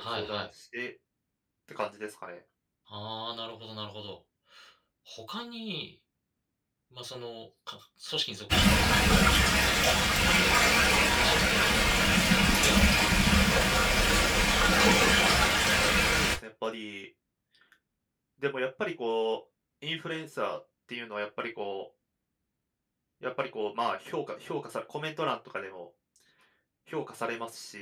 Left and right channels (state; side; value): identical; both; correlation 1.00